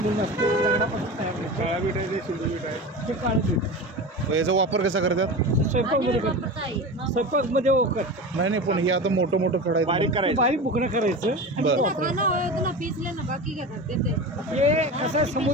असतं दगडापासून तयार होतं. काळा मीठ आहे ते शिंदे मीठ आहे. ते काळं मीठ याचा वापर कसा करतात? स्वयंपाकमध्ये करतात. स्वयंपाकमध्ये करतात. नाही पण हे आता मोठं मोठं खडा बारीक करायचं. बारीक बुकणं करायचं आणि बरं. ते वापरायचं. हे कसं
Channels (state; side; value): normal; both; correlation 0.28